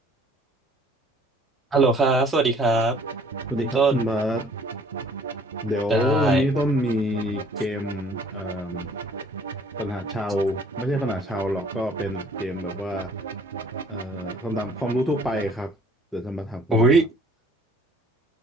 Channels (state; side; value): normal; both; correlation 0.56